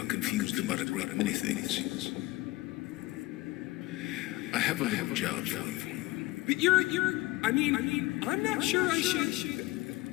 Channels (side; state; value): right; quieter; 19.8 dB